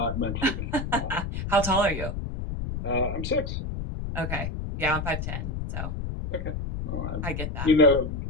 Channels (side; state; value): left; noise; rumble, 4 dB below the sound